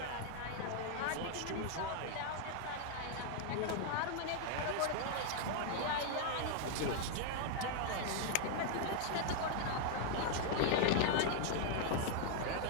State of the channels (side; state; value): both; different; correlation 0.00